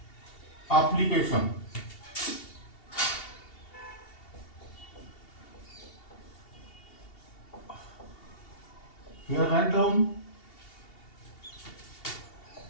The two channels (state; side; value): late; right; 2.7 ms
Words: application. Here write down